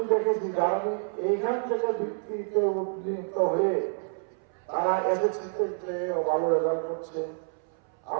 দেখেছি কারণ এইখান থেকে ভিত্তিতে উন্নীত হয়ে তারা এসএসসিতে চেয়েও ভালো রেজাল্ট করছে,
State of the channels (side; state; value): left; silent; 59 dB below the other